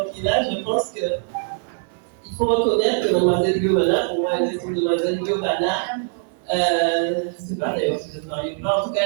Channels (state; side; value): silent; left; 56 dB below the other